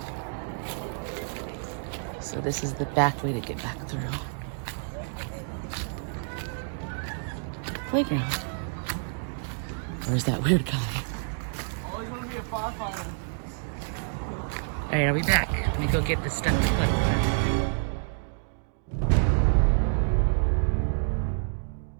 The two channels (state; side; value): silent; left; digital silence